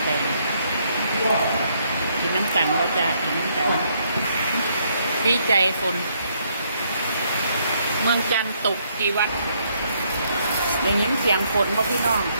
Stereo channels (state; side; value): inverted; both; correlation -0.71